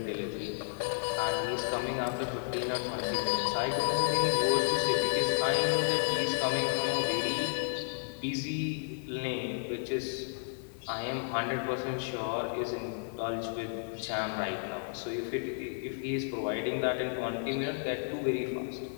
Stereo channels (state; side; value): silent; right; digital silence